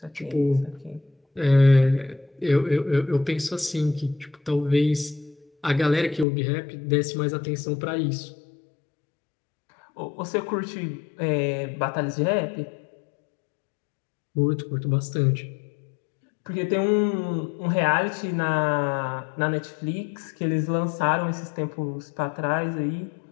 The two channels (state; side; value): drops out; right; at 6.2 s